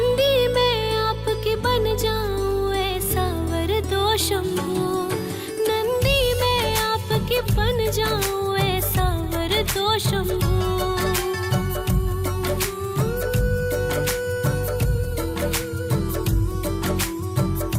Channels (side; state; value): both; identical; correlation 1.00